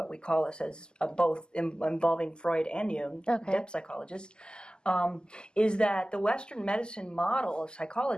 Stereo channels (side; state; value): right; late; 0.046 ms